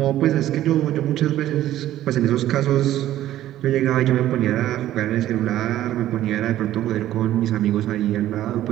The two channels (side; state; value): left; quieter; 13.3 dB